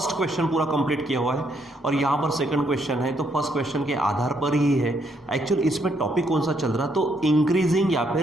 क्वेश्चन पूरा कंप्लीट किया हुआ है और यहाँ पर सेकंड क्वेश्चन है। तो फर्स्ट क्वेश्चन के आधार पर ही है एक्चुअल इसमें टॉपिक कौन सा चल रहा, तो इंक्रीजिंग या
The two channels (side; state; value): both; normal; correlation 0.73